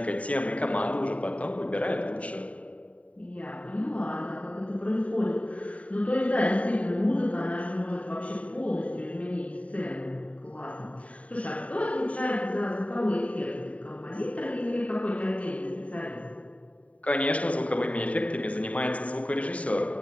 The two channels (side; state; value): right; late; 0.067 ms